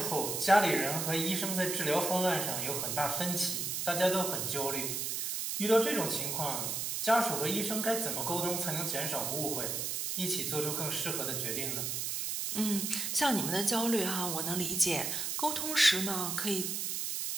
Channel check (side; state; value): right; noise; hiss, 1 dB below the sound